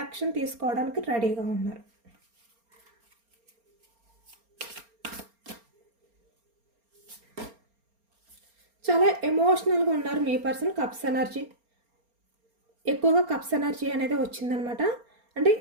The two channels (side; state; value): left; late; 4.3 ms